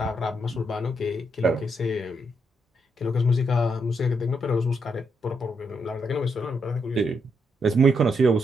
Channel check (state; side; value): normal; both; correlation 0.79